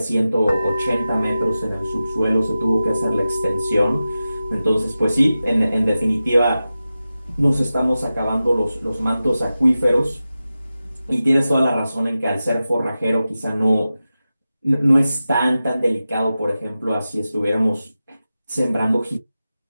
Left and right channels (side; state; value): both; inverted; correlation -0.94